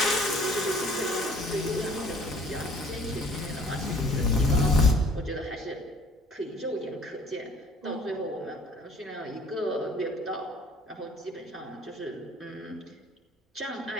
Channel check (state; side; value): normal; both; correlation 0.53